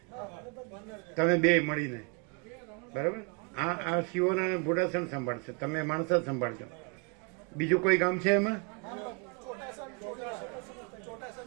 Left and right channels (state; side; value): quieter; left; 33.9 dB